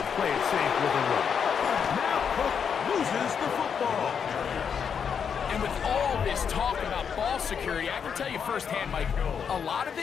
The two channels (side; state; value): right; quieter; 7.0 dB